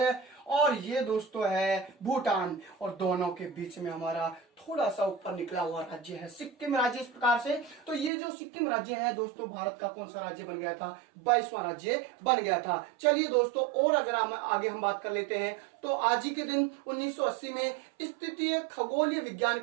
और ये दोस्तों है भूटान, और दोनों के बीच में हमारा थोड़ा सा ऊपर निकला हुआ राज्य है सिक्किम राज्य इस प्रकार से। तो ये जो सिक्किम राज्य है दोस्तों भारत का कौन सा राज्य बन गया था? 22वां राज्य बन गया था। चलिए दोस्तों, और अगर आगे हम बात कर लेते हैं तो आज ही के दिन 1980 में स्थितीय खगोलीय विज्ञान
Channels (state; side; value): drops out; left; at 8.1 s